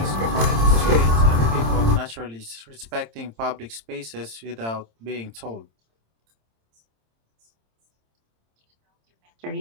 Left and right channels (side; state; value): left; late; 26 ms